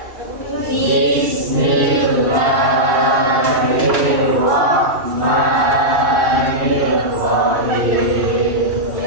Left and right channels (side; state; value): left; late; 2.7 ms